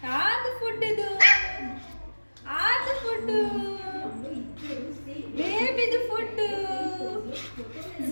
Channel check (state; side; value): inverted; both; correlation -1.00